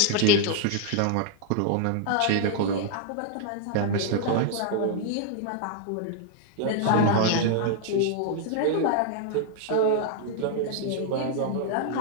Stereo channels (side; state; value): both; different; correlation -0.01